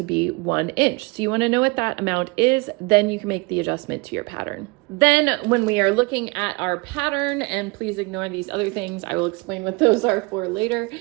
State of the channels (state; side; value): quieter; left; 26.9 dB